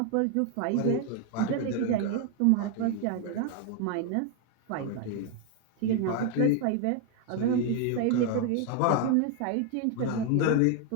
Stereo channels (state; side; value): different; both; correlation 0.01